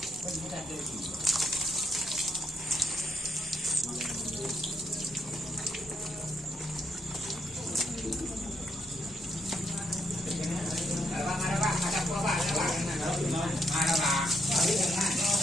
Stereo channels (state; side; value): normal; both; correlation 0.77